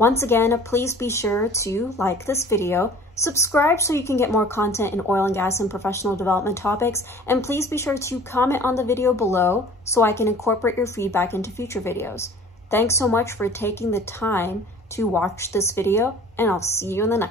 again, please be sure to like this video, subscribe so you can get more content in oil and gas and professional development topics, and please be sure to comment on the video below so I can incorporate your feedback into future videos. Thanks so much for taking the time to watch this video, and I'll see you in the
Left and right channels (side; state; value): both; normal; correlation 0.47